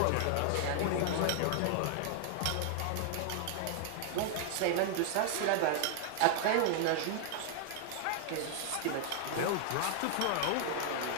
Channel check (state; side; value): different; both; correlation 0.00